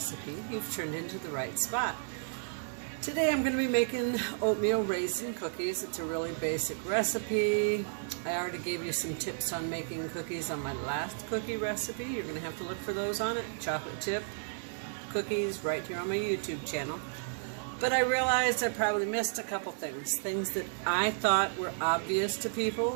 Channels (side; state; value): left; silent; digital silence